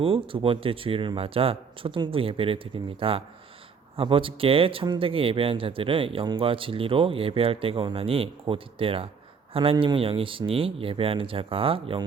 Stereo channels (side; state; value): left; quieter; 5.8 dB